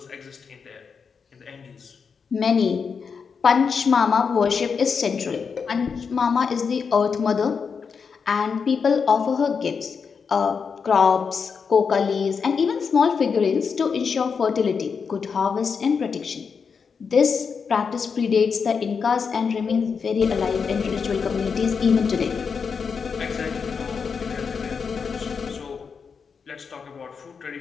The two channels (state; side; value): quieter; right; 5.8 dB